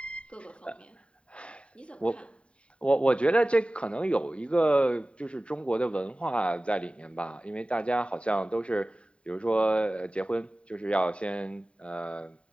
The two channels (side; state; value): right; late; 0.059 ms